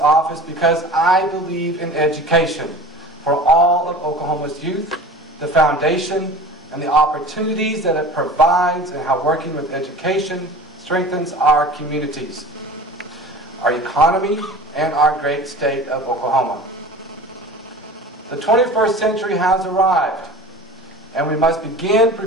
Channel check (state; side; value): normal; both; correlation 0.38